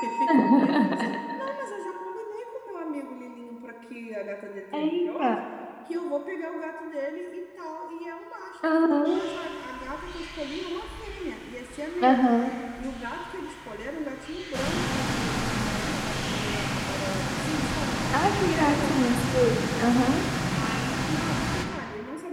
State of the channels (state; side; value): identical; both; correlation 1.00